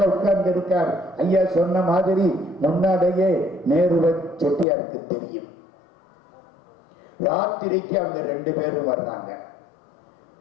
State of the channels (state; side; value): drops out; right; at 4.7 s